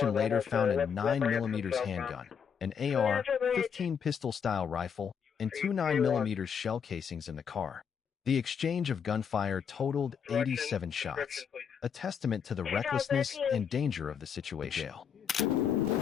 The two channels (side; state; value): right; quieter; 7.2 dB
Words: later found a 9mm handgun, an AR-15 pistol-style rifle, and 2 9mm shell casings in the car. The exchange of gunfire totaled 87 shots, a testament to the recklessness and danger of the situation.